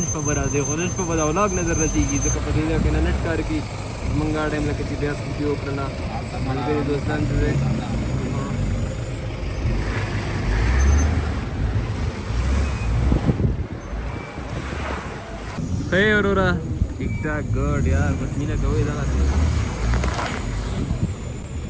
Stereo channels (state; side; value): identical; both; correlation 1.00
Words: شپه به راځئ خو نن شپه به دا ولاګ نه در رسېږي ځکه په دې ځای کې نه نټ کار کوي زموږ دا ټایم لکه چې بیا سکوټي وکړله ملګري دوستان چې دی ښه یې وروره ټیک ټاک ګډ یار بس مینه کوئ دغسې